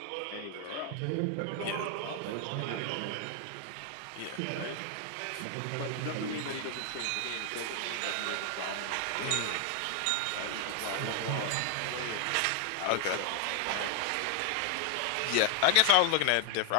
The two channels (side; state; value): both; different; correlation 0.00